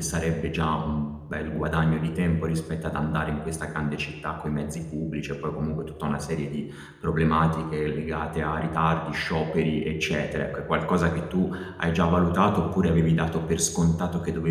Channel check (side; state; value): both; identical; correlation 1.00